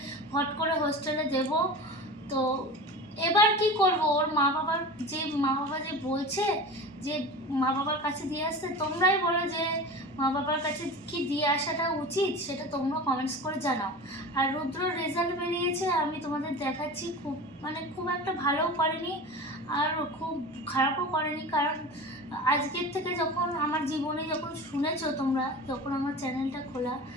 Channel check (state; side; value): normal; both; correlation 0.33